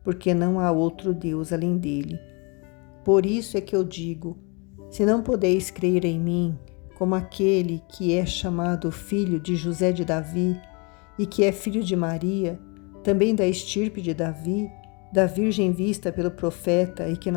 porque não há outro Deus além dele. Por isso é que eu digo: se não podeis crer em mim, como aquele que é chamado filho de José de Davi, e que é filho de Maria, também da estirpe de Davi, da virgem vista pelo profeta e que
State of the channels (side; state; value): right; quieter; 31.4 dB